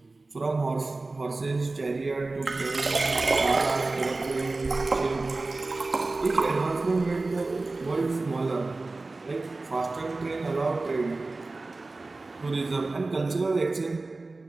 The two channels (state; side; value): quieter; left; 3.3 dB